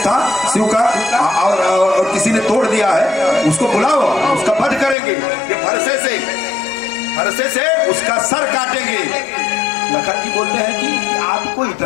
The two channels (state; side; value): drops out; right; at 5.0 s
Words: था शिव का और किसी ने तोड़ दिया है, उसको बुलाओ, उसका वध करेंगे, ये फरसे से उसका सर काटेंगे। लखन जी बोलते हैं कि आपको